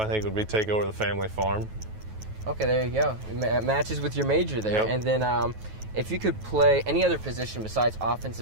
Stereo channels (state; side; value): late; left; 9.3 ms